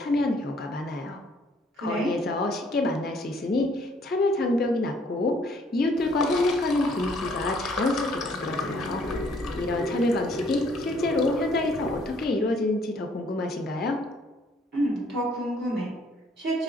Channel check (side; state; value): both; normal; correlation 0.63